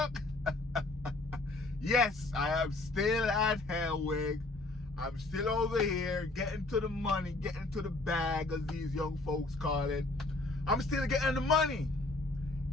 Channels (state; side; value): quieter; right; 3.0 dB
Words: Yes, I am still at Helwig. I'm still over here getting to the money, getting to the bag, as these young folks call it. I'm still getting the money.